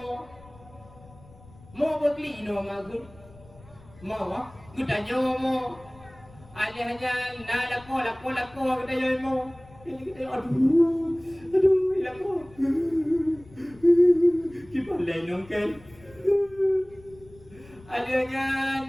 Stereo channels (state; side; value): noise; left; rumble, 23 dB below the sound